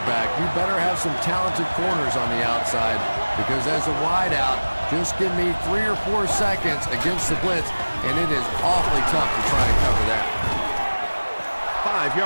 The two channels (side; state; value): both; inverted; correlation -1.00